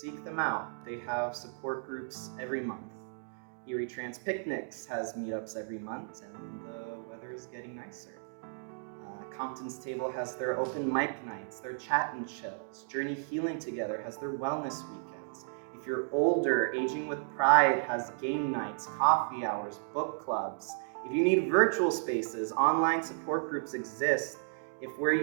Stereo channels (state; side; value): silent; left; digital silence